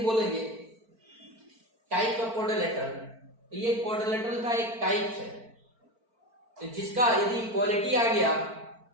बोलेंगे, टाइप ऑफ क्वाड्रिलेटरल, तो ये क्वाड्रिलेटरल का एक टाइप है। तो जिसका यदि इक्वालिटी आ गया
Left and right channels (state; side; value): late; left; 4.5 ms